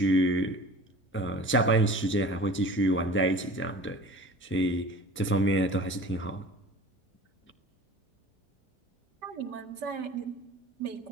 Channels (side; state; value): both; normal; correlation 0.41